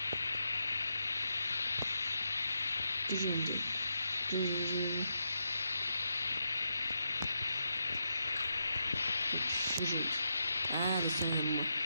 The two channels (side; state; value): both; inverted; correlation -0.84